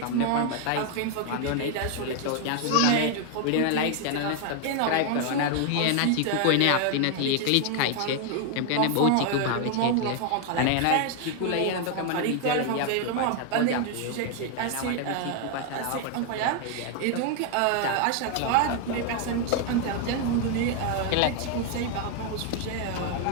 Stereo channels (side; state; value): both; different; correlation 0.01